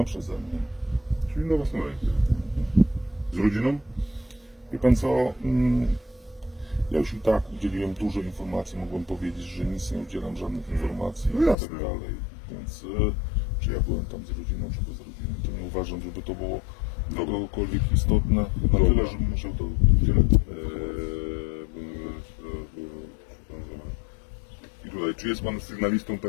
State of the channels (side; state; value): right; drops out; at 11.6 s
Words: przeze mnie. Czyli na własną rękę. Z rodziną? Wie pan co? Ja już i tak udzieliłem dużo informacji, mogłem powiedzieć, że nic nie udzielam żadnych informacji No i jasne. tak dalej. Więc czy ja byłem tam z rodziną, czy bez rodziny, to nie uważam, żeby to było dla kogokolwiek istotne. Na Dobra. tyle, żebym musiał to udzielać. I tutaj, czy jest pan sygnalistą